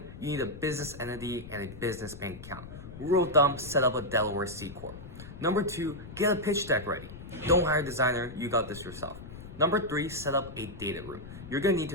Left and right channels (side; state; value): left; noise; rumble, 13 dB below the sound